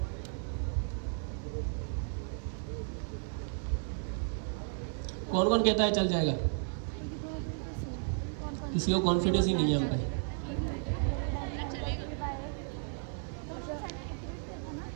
कौन कौन कहता है चल जाएगा? किसी को कॉन्फिडेंस ही नहीं है हम पे।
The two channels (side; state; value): left; silent; 55 dB below the other